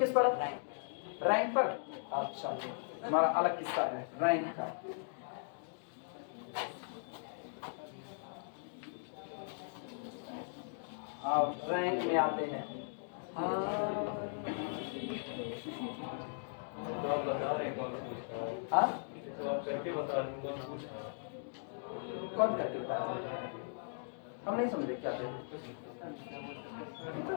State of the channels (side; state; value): right; silent; digital silence